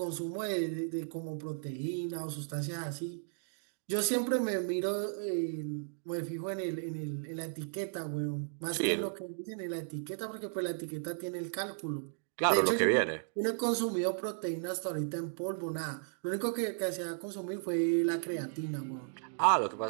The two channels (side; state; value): left; silent; digital silence